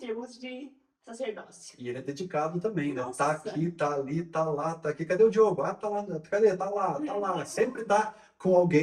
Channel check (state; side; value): identical; both; correlation 1.00